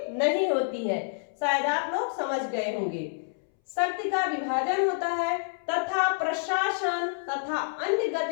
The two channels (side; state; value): right; silent; 59 dB below the other